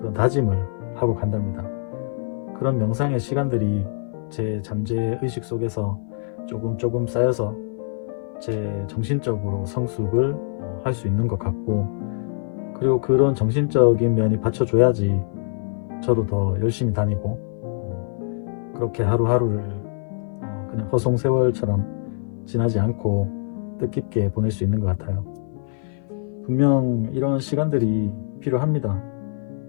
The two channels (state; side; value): silent; right; 57 dB below the other